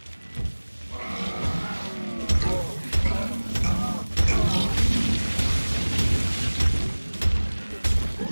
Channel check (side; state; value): both; inverted; correlation -1.00